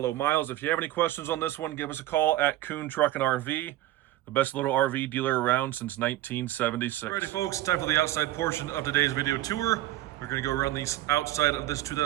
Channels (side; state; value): left; quieter; 15.1 dB